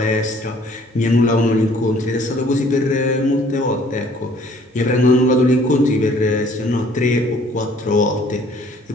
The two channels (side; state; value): both; normal; correlation 0.57